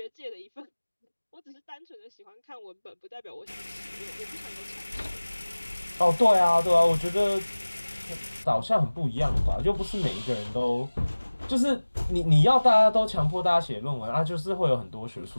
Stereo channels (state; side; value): inverted; both; correlation -1.00